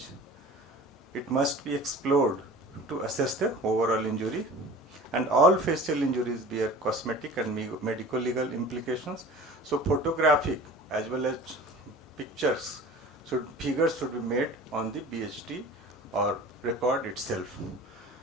it must be explored to assess the overall injury. And all facial injuries bear cosmetic and medico-legal implications. So photographic as well as figures should be made on the BHT or record itself.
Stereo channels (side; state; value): both; normal; correlation 0.41